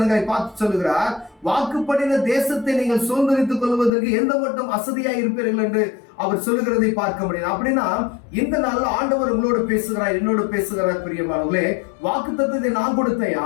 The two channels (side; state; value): right; drops out; at 3.9 s